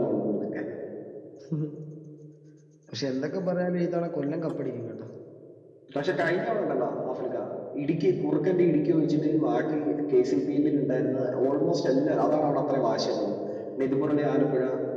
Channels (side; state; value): both; identical; correlation 1.00